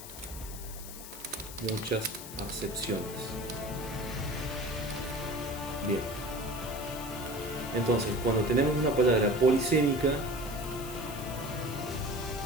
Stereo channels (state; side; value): noise; left; hiss, 12 dB below the sound